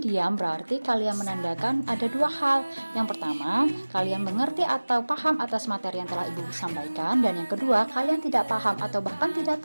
diam berarti kalian menandakan ada 2 hal. Yang pertama, kalian mengerti atau paham atas materi yang telah ibu sampaikan. Dan yang kedua, kalian tidak paham atau bahkan tidak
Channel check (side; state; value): both; inverted; correlation -1.00